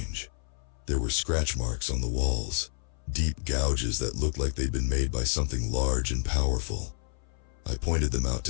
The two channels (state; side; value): silent; right; 56 dB below the other